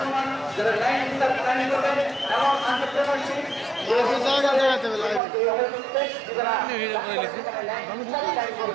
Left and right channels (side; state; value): left; drops out; at 5.2 s